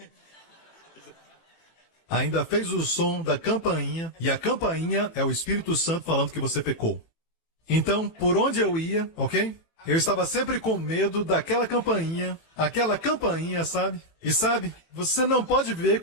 Ainda fez o som da campainha, e a campainha é o Espírito Santo falando que você pecou. Então, por onde eu ia, ok? Eu estava sempre com medo daquela campainha, sabe? E sabe, você não pode viver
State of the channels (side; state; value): right; late; 18 ms